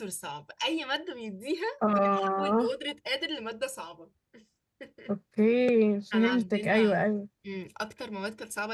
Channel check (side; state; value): both; identical; correlation 1.00